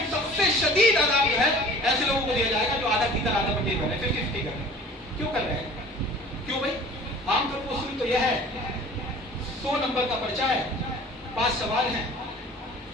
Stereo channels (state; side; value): normal; both; correlation 0.46